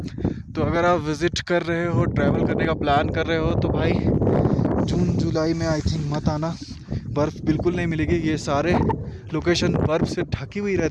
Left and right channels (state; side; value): identical; both; correlation 1.00